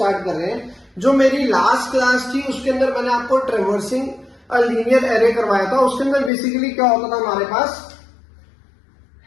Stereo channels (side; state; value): right; drops out; at 6.3 s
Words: कर रहे हैं। जो मेरी लास्ट क्लास थी उसके अंदर मैंने आपको ट्रेवर्सिंग अ लीनियर एरे करवाया था। उसके अंदर बेसिकली क्या होता था, हमारे पास